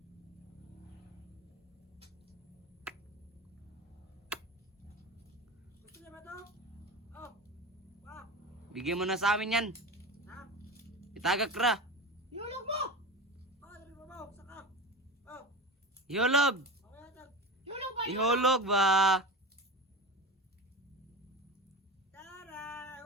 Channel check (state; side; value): normal; both; correlation 0.27